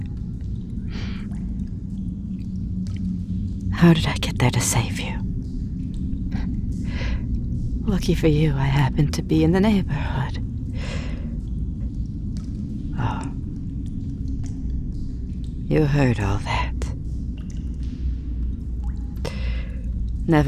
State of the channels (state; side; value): identical; both; correlation 1.00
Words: How did I get there to save you? Lucky for you, I happened to be in the neighborhood. Oh. You heard all that.